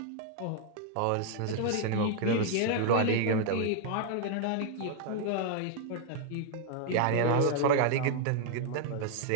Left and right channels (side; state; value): both; different; correlation 0.00